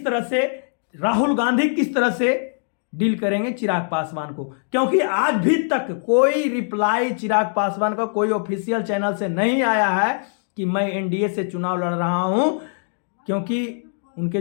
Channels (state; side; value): silent; right; digital silence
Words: तरह से, राहुल गांधी किस तरह से डील करेंगे चिराग पासवान को? क्योंकि आज भी तक कोई रिप्लाई चिराग पासवान का कोई ऑफिशियल चैनल से नहीं आया है कि मैं एनडीए से चुनाव लड़ रहा हूं, क्योंकि